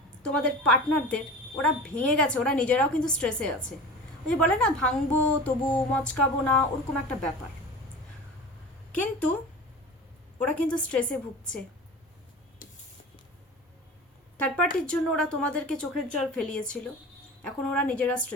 তোমাদের পার্টনারদের ওরা ভেঙে গেছে, ওরা নিজেরাও কিন্তু স্ট্রেসে আছে। ওই যে বলে না, ভাঙবো তবু মচকাবো না, ওরকম একটা ব্যাপার। কিন্তু ওরা কিন্তু স্ট্রেসে ভুগছে। থার্ড পার্টির জন্য ওরা তোমাদেরকে চোখের জল ফেলিয়েছিল, এখন ওরা নিজেরা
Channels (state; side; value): normal; both; correlation 0.35